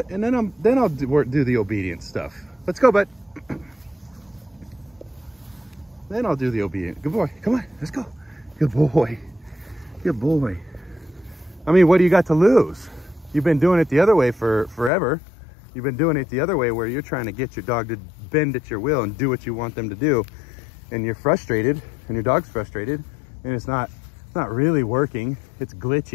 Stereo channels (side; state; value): right; drops out; at 14.9 s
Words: And then I'll do the obedience stuff. Let's go, bud. Then I'll do the obedient. Good boy, come on, let's go. Good boy, good boy. I mean, what do you got to lose? You've been doing it the other way for forever. You've been doing it the other way where you're trying to get your dog to bend at your will and do what you want them to do. And you're frustrated and your dog's frustrated and it's not really working. It's